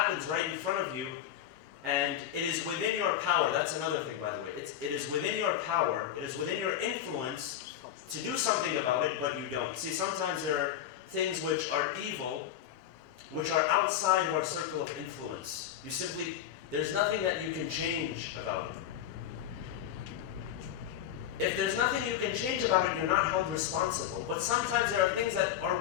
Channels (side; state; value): right; quieter; 10.7 dB